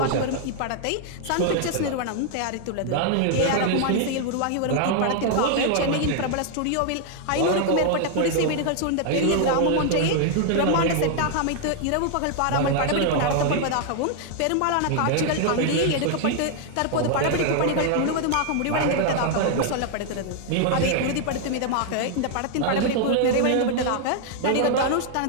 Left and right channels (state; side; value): different; both; correlation 0.00